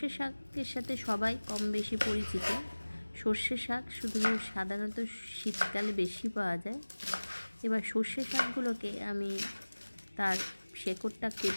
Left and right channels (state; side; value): inverted; both; correlation -1.00